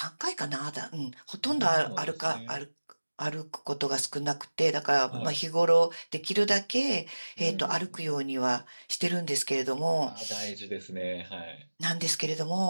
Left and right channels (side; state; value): both; inverted; correlation -1.00